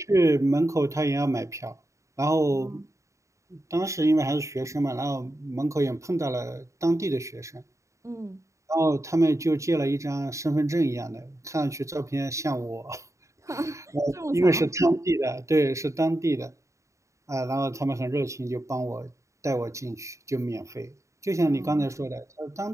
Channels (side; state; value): left; late; 0.15 ms